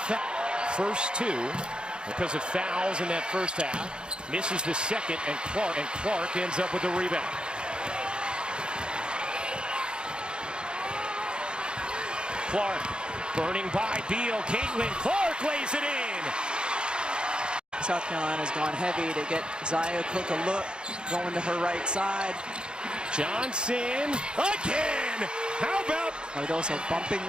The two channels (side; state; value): left; late; 0.051 ms